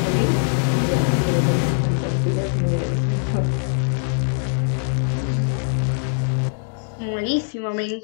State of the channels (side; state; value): right; silent; digital silence